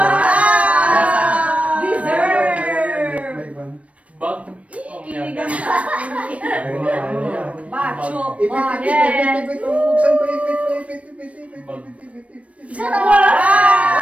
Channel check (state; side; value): late; left; 0.064 ms